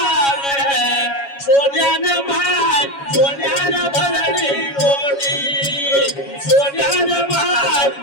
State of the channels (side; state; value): right; late; 7.2 ms